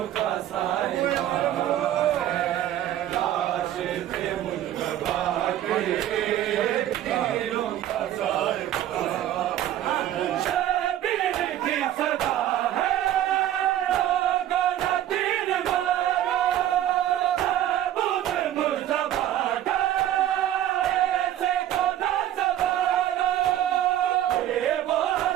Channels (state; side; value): quieter; left; 12.2 dB